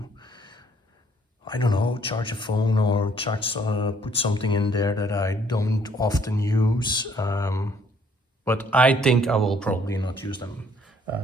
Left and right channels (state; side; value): normal; both; correlation 0.63